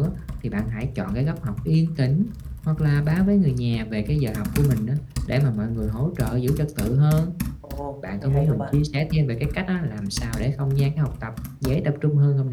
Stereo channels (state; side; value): identical; both; correlation 1.00